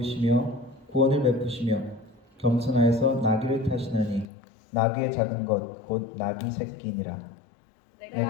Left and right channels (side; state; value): right; drops out; at 4.2 s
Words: 구원을 베푸시며 겸손하여서 나귀를 타시나니 나귀의 작은 것 곧 나귀 새끼니라.